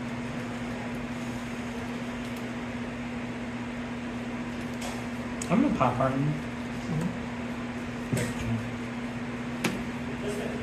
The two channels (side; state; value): both; identical; correlation 1.00